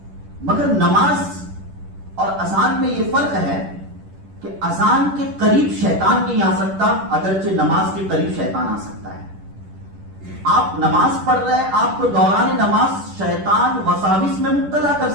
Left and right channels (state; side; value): late; left; 10 ms